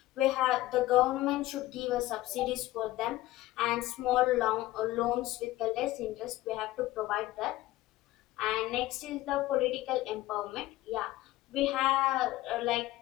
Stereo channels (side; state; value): right; quieter; 17.0 dB